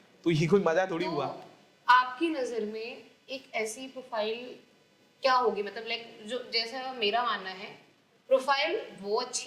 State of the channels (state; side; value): identical; both; correlation 1.00